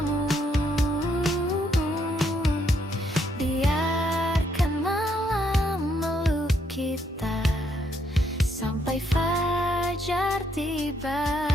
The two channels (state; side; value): normal; both; correlation 0.73